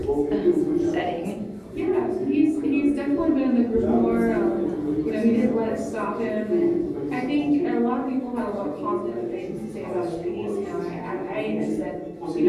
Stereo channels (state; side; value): identical; both; correlation 1.00